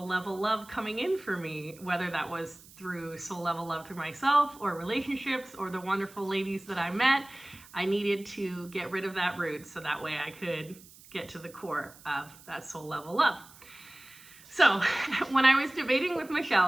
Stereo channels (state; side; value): noise; right; hiss, 22 dB below the sound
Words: level love coming in for me, whether that was through soul level love through myself or relationships or the wonderful ladies that I met. I needed to get rid of that root so that way I could get to the core of that soul level love. So when I was debating with